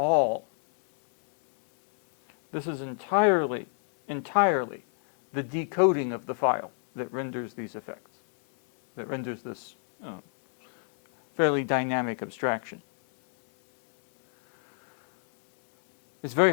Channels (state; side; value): silent; right; 60 dB below the other